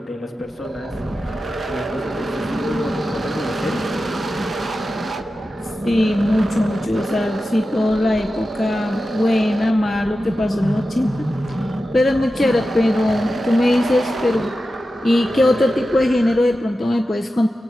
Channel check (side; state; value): both; normal; correlation 0.92